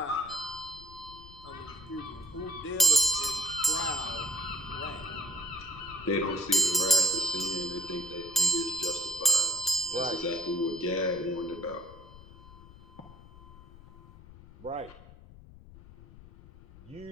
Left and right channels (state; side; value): noise; left; rumble, 19 dB below the sound